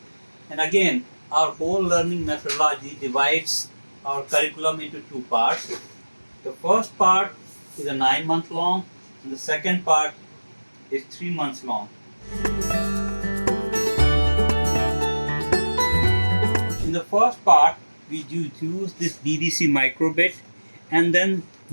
And again, our whole learning methodology divides our curriculum into two parts. The first part is a 9-month long, and the second part is 3 months long. In the first part, we use this DDC microbit, and then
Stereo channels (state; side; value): inverted; both; correlation -1.00